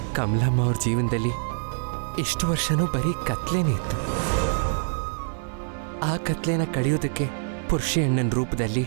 ಕಮಲಮ್ಮ ಅವ್ರ ಜೀವನದಲ್ಲಿ ಇಷ್ಟು ವರ್ಷನೂ ಬರೀ ಕತ್ಲೇನೇ ಇತ್ತು. ಆ ಕತ್ಲೆನ ಕಳೆಯೋದಕ್ಕೆ ಪುರುಷಿ ಅಣ್ಣನ ರೂಪದಲ್ಲಿ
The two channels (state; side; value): silent; left; digital silence